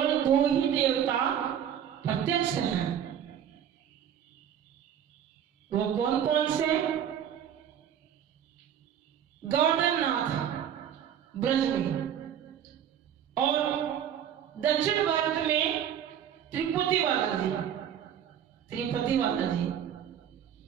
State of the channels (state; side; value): quieter; left; 9.4 dB